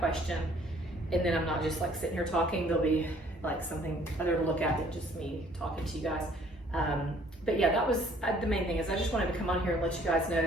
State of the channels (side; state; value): both; normal; correlation 0.58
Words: question, and then I'm not just like sitting here talking. There'll be like something other to look at than just me talking to you guys. But yeah, that was the main thing. Is I just wanted to come on here and let you guys know